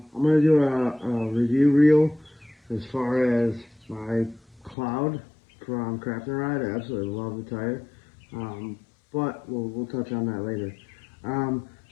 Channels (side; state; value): right; drops out; at 4.8 s